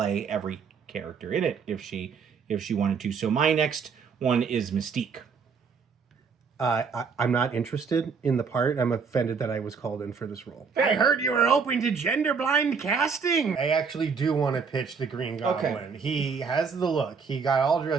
every character in it if she wanted to. So my next one is Mystique. I'm not interested in the part. I'm offended that I was called in for this role. I heard you were open to gender-blind casting. I actually do want to pitch the Green Goblin. Okay. He has the look. He got all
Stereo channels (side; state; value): left; quieter; 5.7 dB